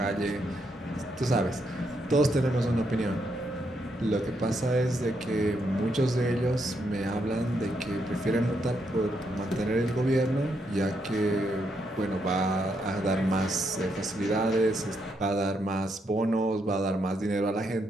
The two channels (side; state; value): both; normal; correlation 0.78